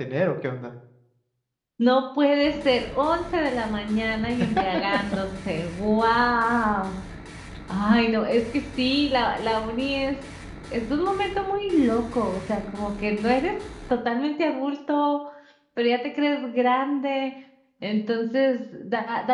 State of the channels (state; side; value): identical; both; correlation 1.00